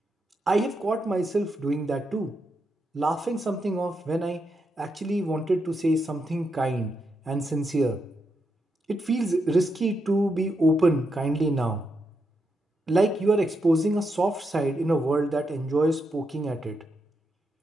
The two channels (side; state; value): both; normal; correlation 0.83